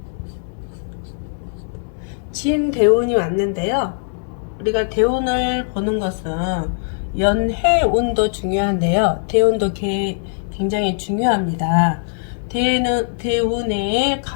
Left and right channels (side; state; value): right; silent; 66 dB below the other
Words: 진대운이 왔는데요. 우리가 대운을 보는 것은 연해운도 중요한데요. 대운도 굉장히 중요합니다. 대운에